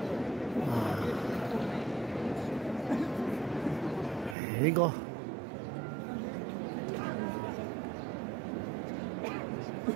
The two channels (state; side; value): drops out; left; at 4.4 s